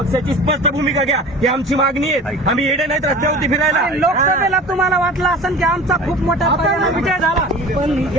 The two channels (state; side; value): normal; both; correlation 0.39